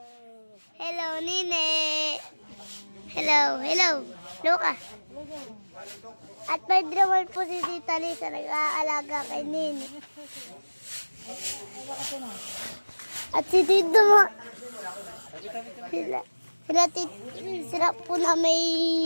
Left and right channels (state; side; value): inverted; both; correlation -1.00